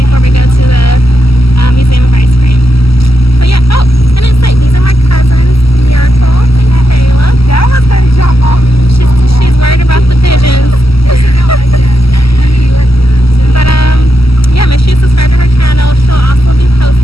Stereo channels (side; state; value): right; late; 0.76 ms